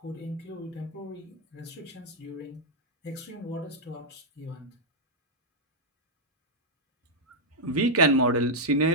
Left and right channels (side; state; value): both; normal; correlation -0.05